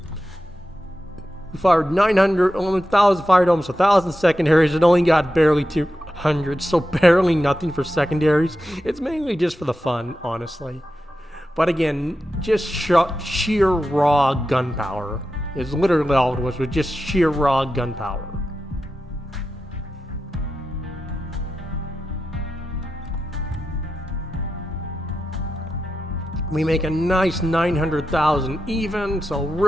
We fired 900, 1,000, fired almost 1,000 secondaries and only got barely 200, so barely nothing for secondaries. It's mainly just for the fun, honestly. But again, just sheer raw gunpowder is literally all it was just sheer raw gunpowder. We make a nice 900,000 even, so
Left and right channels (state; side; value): normal; both; correlation 0.90